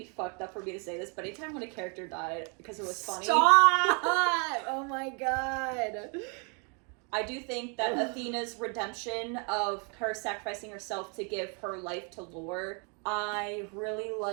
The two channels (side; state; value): left; quieter; 36.4 dB